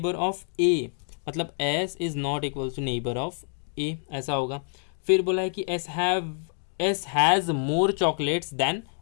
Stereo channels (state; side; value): silent; right; 60 dB below the other